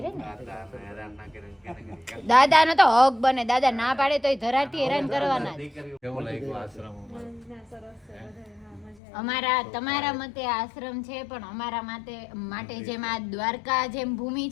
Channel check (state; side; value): drops out; right; at 9.0 s